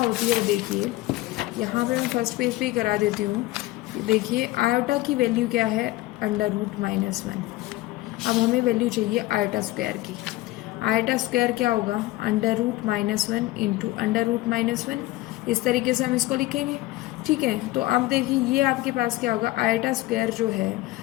है वो देखिए, यहाँ पे मैं फर्स्ट पेज पे ही करा देती हूँ। देखिए आयोटा की वैल्यू क्या है, √-1। अब हमें वैल्यू चाहिए आयोटा स्क्वायर की। आयोटा स्क्वायर क्या होगा, √-1 इंटू √-1। इस तरीके से हम इसको लिखेंगे। ठीक है, तो अब देखिए ये आपके पास क्या होगा, आयोटा स्क्वायर जो है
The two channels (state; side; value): quieter; right; 18.2 dB